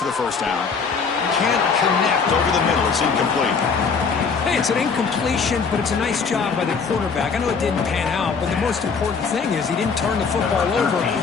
the first down. Can't connect over the middle. It's incomplete. Hey, it's an incompletion, but it's a nice job by the quarterback. I know it didn't pan out, but the most important thing is he didn't turn the football over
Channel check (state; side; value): quieter; right; 5.4 dB